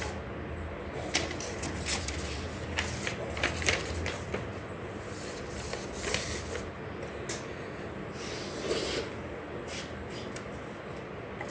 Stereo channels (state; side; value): identical; both; correlation 1.00